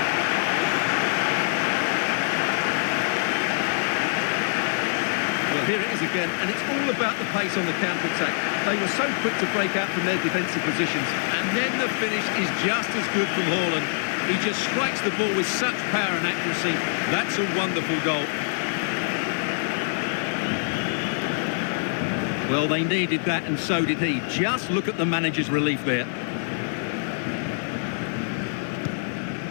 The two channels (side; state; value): right; silent; digital silence